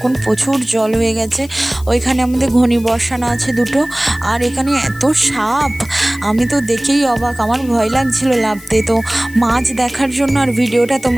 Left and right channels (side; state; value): left; noise; hiss, 21 dB below the sound